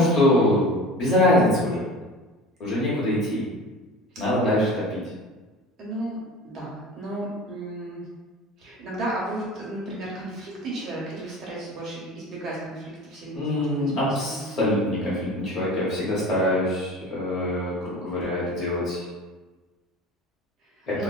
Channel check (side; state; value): both; normal; correlation 0.37